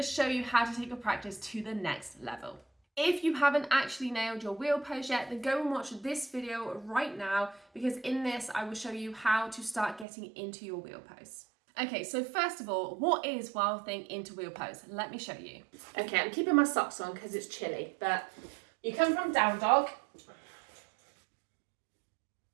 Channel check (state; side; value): drops out; left; at 10.1 s